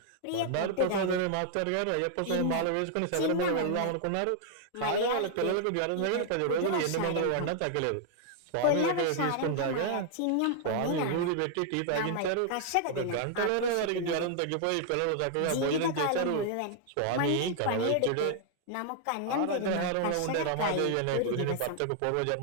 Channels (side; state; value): both; different; correlation -0.01